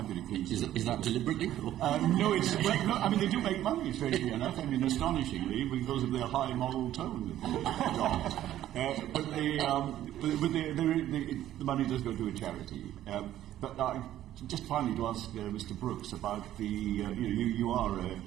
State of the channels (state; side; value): quieter; left; 12.7 dB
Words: been accused. Is that deliberately? No, it's. Well, no, I mean, they do make money, strangely enough. I mean, astonishingly, because of their high moral tone. But the money does go to a charity. But just finally to ask Mr. Brooks about the. You are